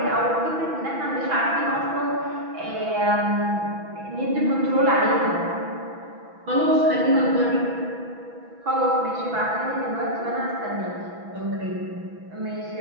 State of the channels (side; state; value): left; late; 6.1 ms